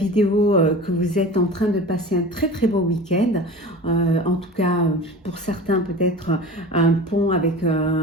que vous êtes en train de passer un très beau week-end. En tout cas, pour certains peut-être un pont avec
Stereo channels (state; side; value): normal; both; correlation 0.36